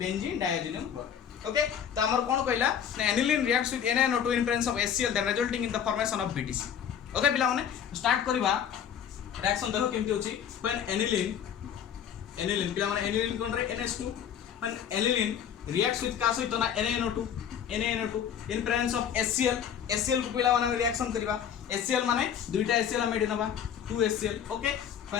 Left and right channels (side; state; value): right; quieter; 8.7 dB